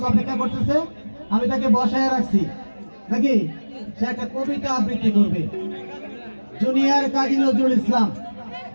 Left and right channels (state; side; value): inverted; both; correlation -1.00